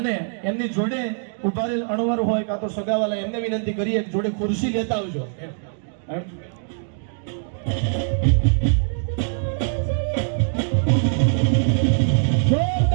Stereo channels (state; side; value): silent; left; digital silence